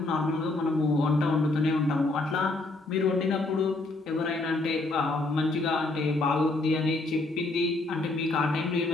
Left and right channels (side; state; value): right; quieter; 3.0 dB